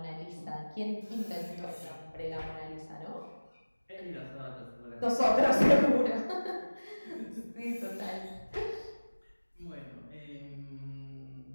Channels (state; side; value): inverted; both; correlation -1.00